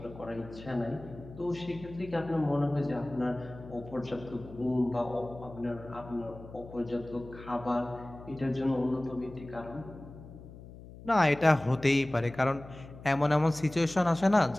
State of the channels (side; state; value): left; noise; hum, 16 dB below the sound